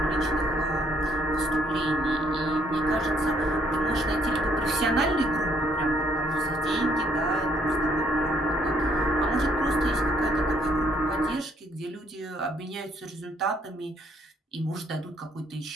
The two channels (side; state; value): both; normal; correlation 0.68